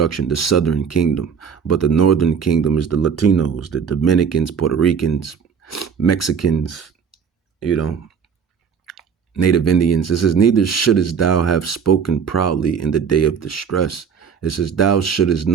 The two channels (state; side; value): quieter; left; 6.8 dB